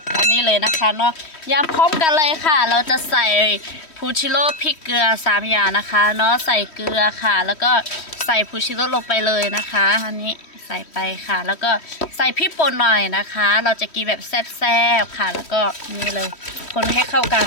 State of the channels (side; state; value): right; late; 3.1 ms